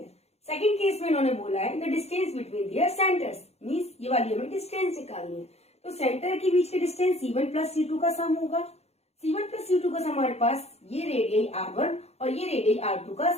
सेकंड केस में इन्होंने बोला है the distance between their centres, means ये वाली हमें डिस्टेंस निकालनी है। तो सेंटर के बीच के डिस्टेंस C1 प्लस C2 का सम होगा। C1 प्लस C2 का सम हमारे पास ये रेडियई R1 और ये रेडियई R2 का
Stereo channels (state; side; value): late; right; 0.31 ms